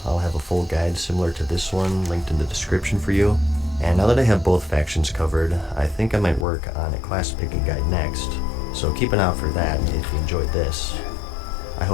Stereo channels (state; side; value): drops out; right; at 6.5 s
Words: I'll have a full guide similar to this one linked in the description for you. And now that I have both factions covered, I think I might work on a class picking guide next, so keep an eye out for that if you enjoyed this. I